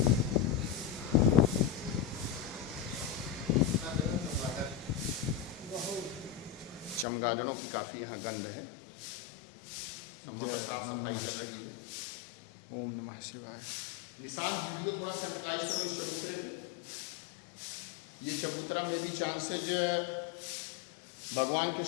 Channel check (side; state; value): right; drops out; at 7.1 s